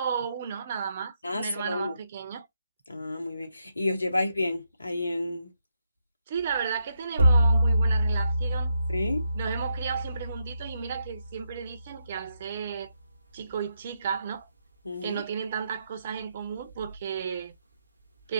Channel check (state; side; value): inverted; both; correlation -0.81